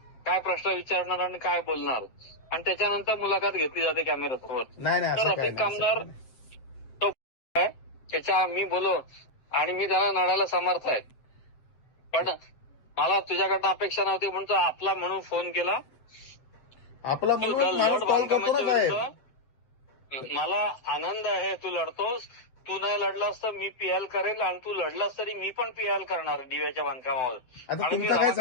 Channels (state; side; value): late; right; 7.8 ms